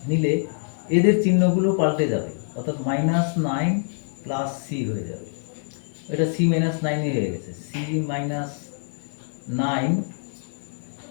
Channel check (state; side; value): silent; right; 55 dB below the other